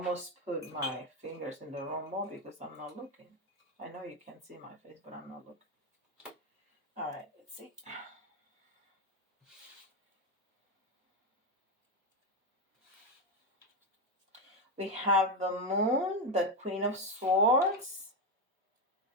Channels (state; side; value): normal; both; correlation 0.09